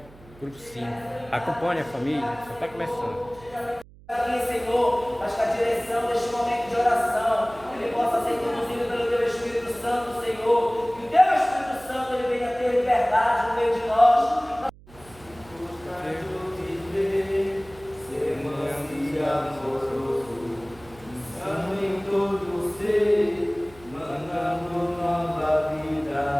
grupo 5. Acompanhe a família, só está começando. Aqui, Senhor, mas que a direção deste momento de oração ele possa ser conduzido pelo Teu Espírito Santo, Senhor. Que o Teu Espírito Santo ele venha ter liberdade no meio de nós. Em todo ser, mandando nova vida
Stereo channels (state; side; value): noise; right; hum, 23 dB below the sound